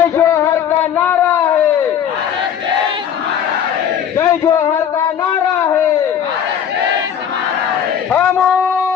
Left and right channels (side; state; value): right; quieter; 8.7 dB